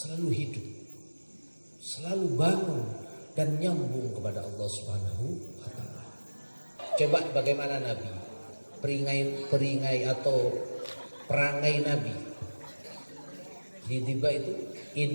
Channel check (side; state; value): both; inverted; correlation -1.00